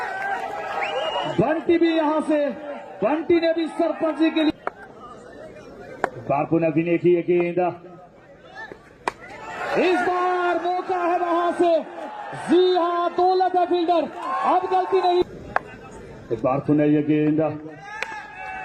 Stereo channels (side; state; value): both; identical; correlation 1.00